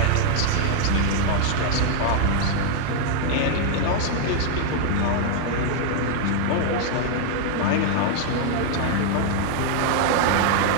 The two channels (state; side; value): different; both; correlation 0.00